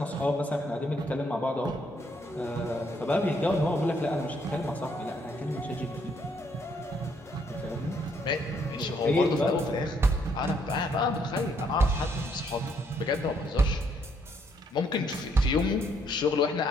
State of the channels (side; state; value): both; normal; correlation 0.70